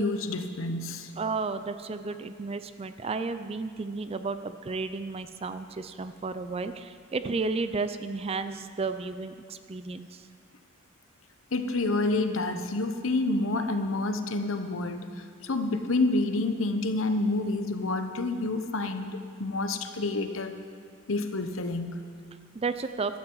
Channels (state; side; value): normal; both; correlation 0.40